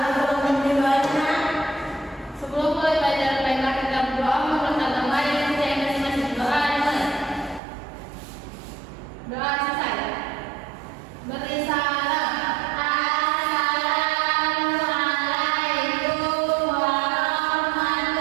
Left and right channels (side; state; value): left; drops out; at 7.6 s